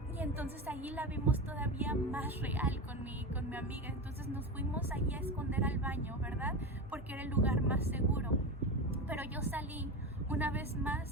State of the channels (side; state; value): both; normal; correlation 0.22